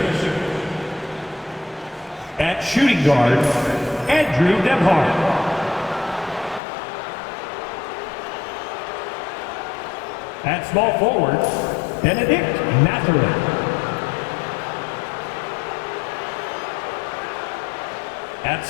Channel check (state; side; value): drops out; right; at 6.6 s